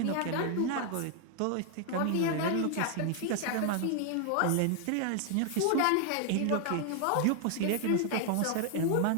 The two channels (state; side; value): different; both; correlation 0.00